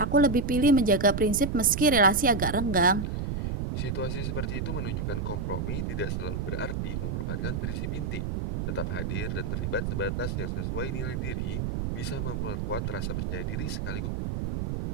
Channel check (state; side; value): noise; right; rumble, 2 dB below the sound